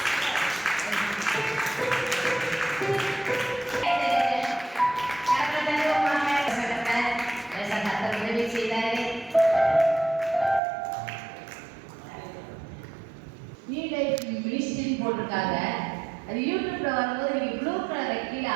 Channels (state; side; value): drops out; left; at 10.6 s